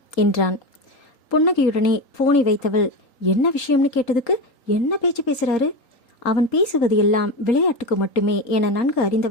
என்றான். புன்னகையுடனே போனை வைத்தவள் என்ன விஷயம்னு கேட்டதுக்கு என்ன பேச்சு பேசுகிறாரு, அவன் பேசுவது எல்லாம் விளையாட்டுக்கு மட்டுமே என நன்கு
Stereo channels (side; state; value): right; late; 3.8 ms